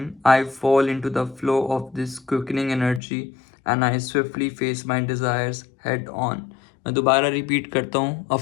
I fall into the flow of this quickening energy and I swiftly face my desires head on. मैं दोबारा रिपीट करता हूँ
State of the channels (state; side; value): drops out; right; at 3.0 s